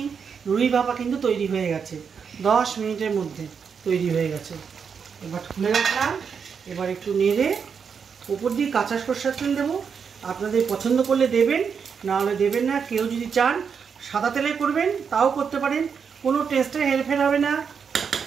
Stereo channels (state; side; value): quieter; left; 6.4 dB